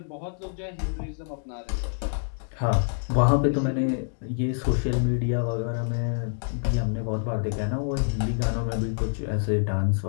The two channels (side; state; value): right; silent; digital silence